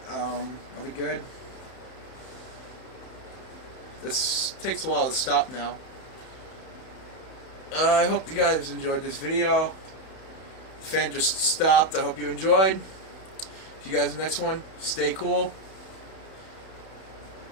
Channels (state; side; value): late; right; 31 ms